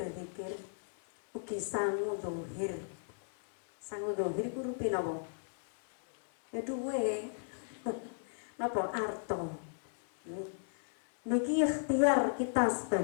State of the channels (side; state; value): right; silent; 54 dB below the other